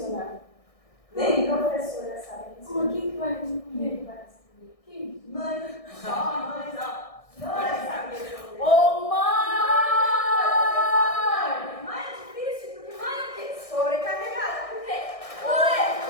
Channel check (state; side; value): late; right; 1.6 ms